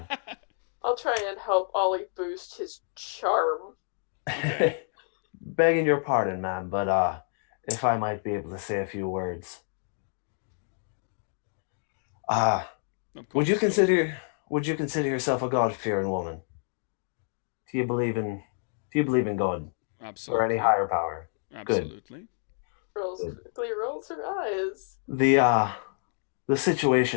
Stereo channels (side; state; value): right; silent; digital silence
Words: try and help Ollie boost his charm. Begging your pardon, ma'am, but if I might be able to say a few words. Of course. Would you consider yourself a God-fearing woman? Do you believe in God Absolutely. or any higher power? Absolutely. Quickly rolls her eyes. The